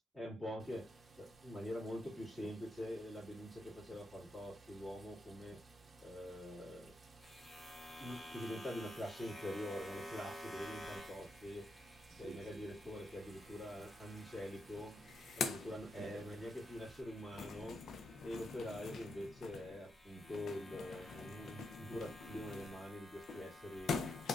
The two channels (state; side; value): normal; both; correlation 0.83